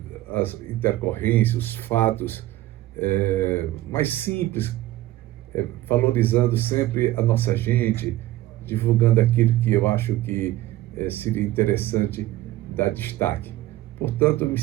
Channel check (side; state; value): left; quieter; 15.7 dB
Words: as intercorrências, os fatos mais simples, valorizando sempre a nossa gente, divulgando aquilo que eu acho que seria interessante dar destaque. Portanto, eu me